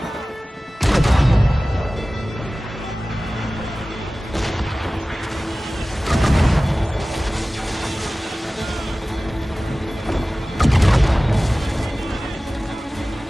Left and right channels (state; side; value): normal; both; correlation 0.97